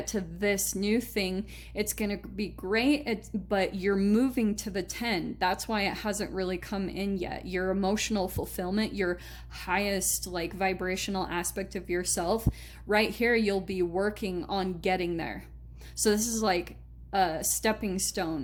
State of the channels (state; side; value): identical; both; correlation 1.00